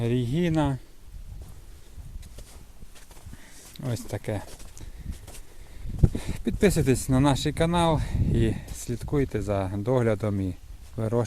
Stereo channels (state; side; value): identical; both; correlation 1.00